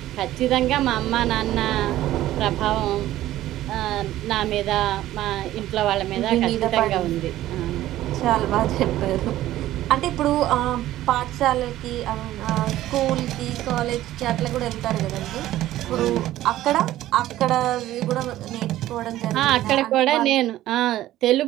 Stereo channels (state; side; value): quieter; left; 14.4 dB